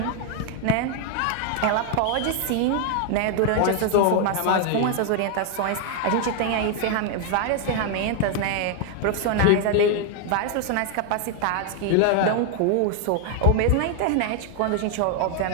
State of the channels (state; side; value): different; both; correlation 0.00